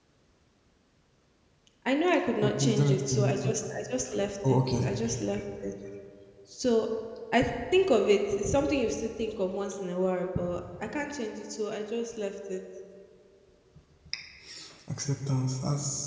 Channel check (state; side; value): identical; both; correlation 1.00